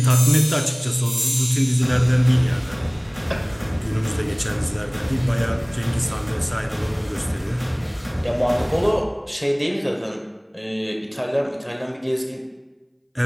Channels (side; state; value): both; identical; correlation 1.00